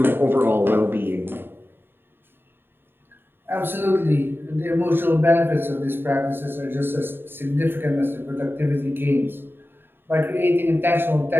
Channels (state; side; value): late; left; 0.10 ms